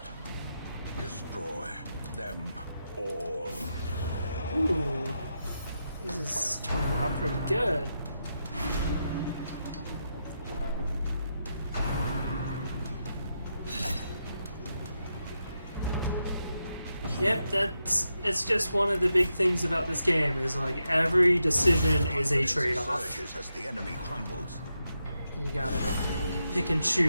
Destroy them all. Ooh, this is turning out pretty good. Yep, it's just one of the big things about this game is like every decision is a Confidence trade-off. surges as the enemy crumbles. You gotta pick and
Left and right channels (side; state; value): both; inverted; correlation -0.85